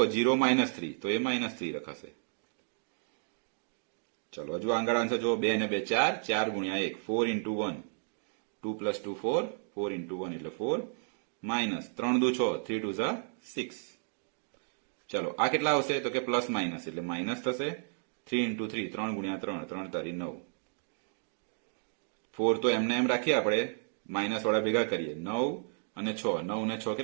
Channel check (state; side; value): silent; left; digital silence